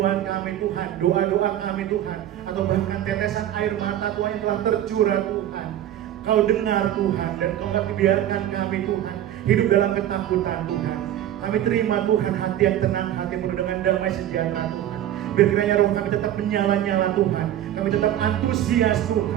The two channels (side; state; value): left; quieter; 11.9 dB